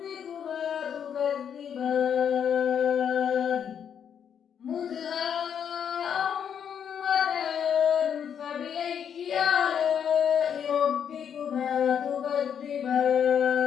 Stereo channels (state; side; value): quieter; right; 8.2 dB